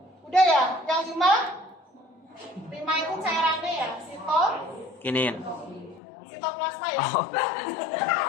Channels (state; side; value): drops out; right; at 6.0 s